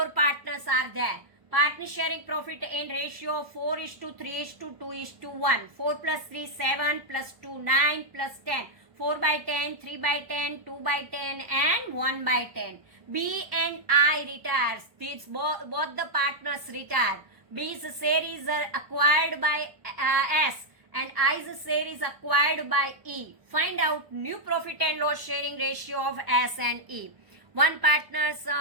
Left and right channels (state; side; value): late; left; 1.2 ms